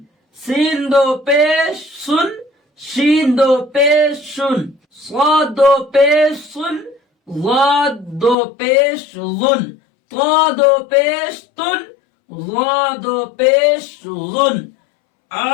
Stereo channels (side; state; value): right; drops out; at 8.3 s